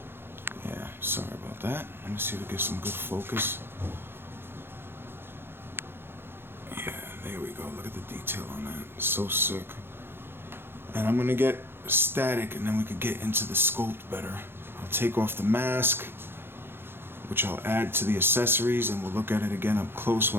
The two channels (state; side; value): late; left; 0.11 ms